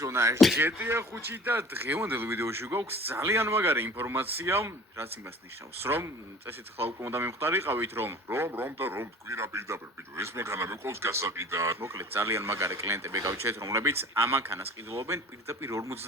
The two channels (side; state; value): both; normal; correlation 0.44